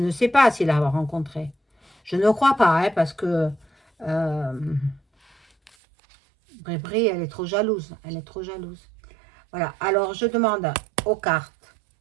sais pas s'il l'a rencontré. Je ne crois pas, hein, parce que Brébré, elle est trop jalouse. Elle est trop jalouse. Voilà, alors je demande aux cartes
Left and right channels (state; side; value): drops out; left; at 5.7 s